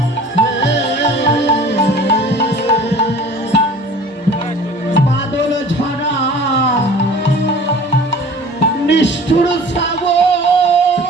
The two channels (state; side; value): normal; both; correlation 0.45